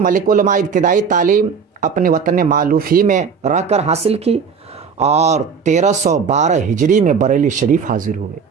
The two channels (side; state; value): left; quieter; 6.1 dB